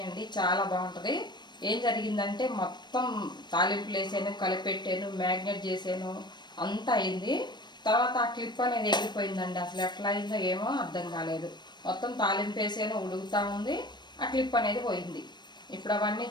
అండి, చాలా బాగుంటుంది. ఏం జరిగిందంటే మొత్తం తాలింపులు వేసాను, కలిపెట్టాను, మ్యాగ్నేట్ చేసాను, అంతా అయింది. తర్వాత ఆ క్లిప్ అనేది ఎగిరిపోయిందండి. అసలు ఎట్లా అయిందో ఏమో అర్థం కాలేదు. మొత్తం తాలింపు వేసాను, ఉడుకుతూ ఉంది, ఆ క్లిప్ అనేది పోయింది. ఇప్పుడు అవన్నీ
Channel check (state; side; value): late; right; 0.21 ms